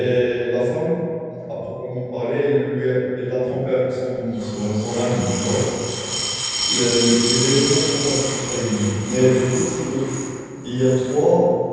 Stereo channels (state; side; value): identical; both; correlation 1.00